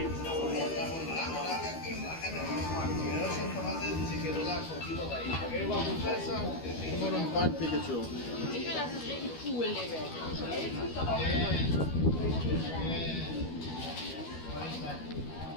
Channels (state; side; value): late; right; 12 ms